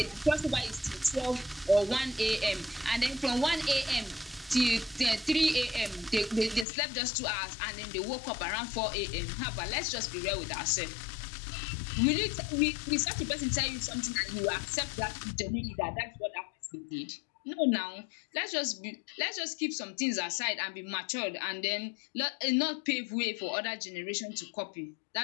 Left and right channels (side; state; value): right; drops out; at 6.7 s